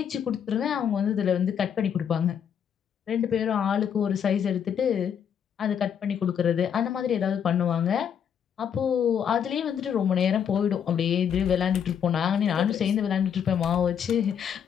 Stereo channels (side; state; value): right; quieter; 8.2 dB